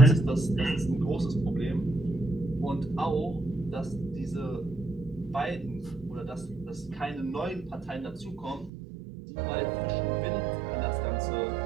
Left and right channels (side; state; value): left; drops out; at 8.7 s